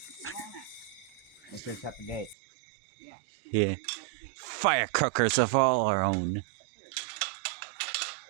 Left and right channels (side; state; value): left; drops out; at 2.4 s